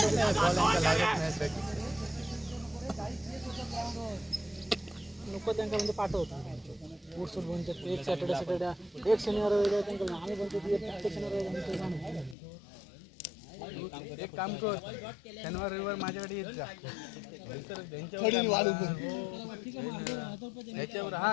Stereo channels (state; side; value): drops out; right; at 12.4 s